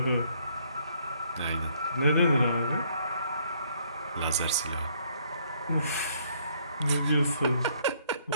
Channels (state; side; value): inverted; both; correlation -0.66